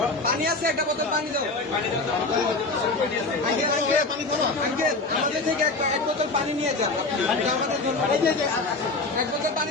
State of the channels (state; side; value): quieter; right; 3.4 dB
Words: পানি আছে, একটা বোতল পানি দাও। আঙ্কেল আঙ্কেল আমাদের থেকে এক বোতল পানি নিয়ে যান, আমাদের জন্য এক বোতল পানি